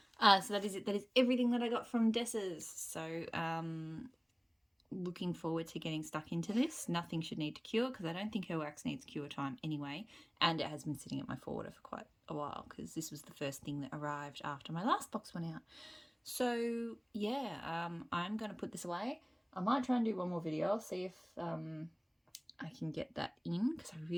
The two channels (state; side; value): identical; both; correlation 1.00